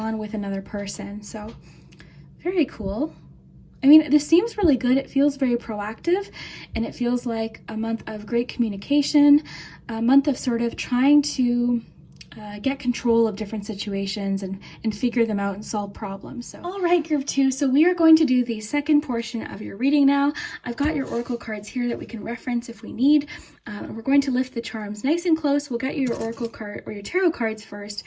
with another person. So very cool. I mean, this seems really good. It feels very proactive, and it feels like a month of great communication, a month of sort of trying to get control of different situations and figure them out and solve problems. So, all right, group 2. So we are going to do the second portion of your reading now. I've got your oracle cards here that we can reference if we need. We're going to lift the charms nice and close. We'll get you your oracle card or your tarot cards first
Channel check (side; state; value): both; identical; correlation 1.00